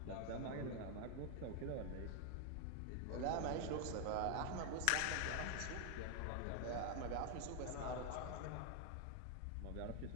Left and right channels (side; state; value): both; different; correlation 0.00